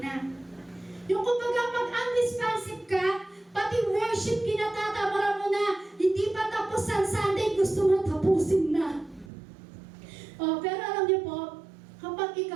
Yung kumbaga pag unresponsive ka, pati worship kinatatamara mo na, hindi pa tapos ang Sunday, gusto mo tapusin na. Pero alam niyo po, kapag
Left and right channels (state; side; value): drops out; left; at 9.3 s